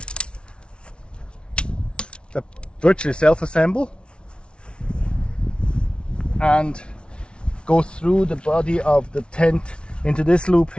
that virtually self-assemble and go through the body of the tent into this loop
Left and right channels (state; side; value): late; right; 0.057 ms